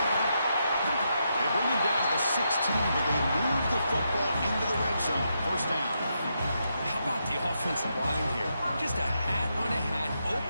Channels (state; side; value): inverted; both; correlation -0.82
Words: They bring him down to the 16, but they move the football into the red zone. First down. How about the offensive line here? Just a hat on a hat,